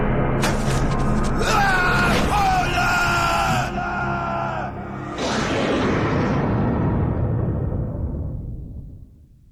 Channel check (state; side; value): identical; both; correlation 1.00